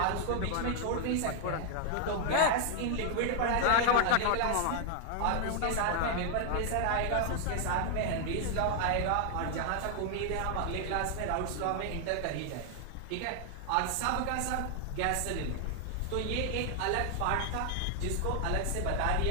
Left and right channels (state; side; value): different; both; correlation 0.00